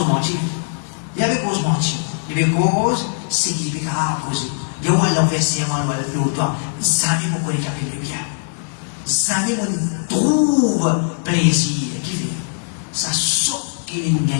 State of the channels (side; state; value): right; silent; 66 dB below the other